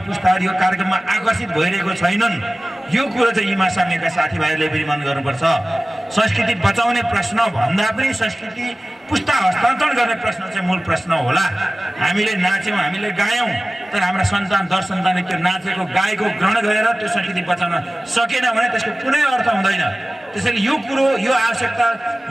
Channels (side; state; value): both; normal; correlation 0.97